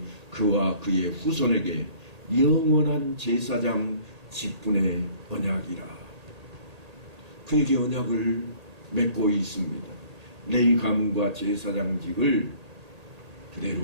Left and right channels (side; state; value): left; late; 1.8 ms